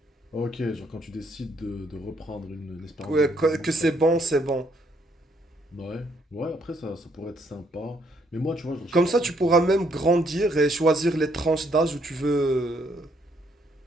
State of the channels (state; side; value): normal; both; correlation 0.70